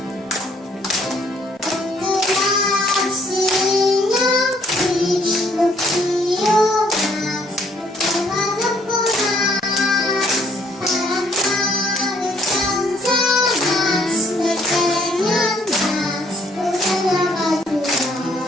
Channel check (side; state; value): both; normal; correlation 0.65